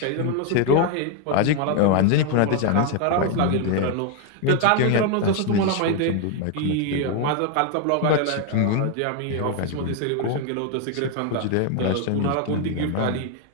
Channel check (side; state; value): both; different; correlation 0.01